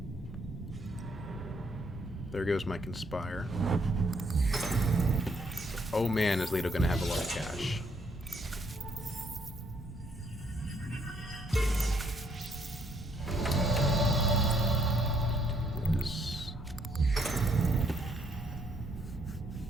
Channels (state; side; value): normal; both; correlation 0.70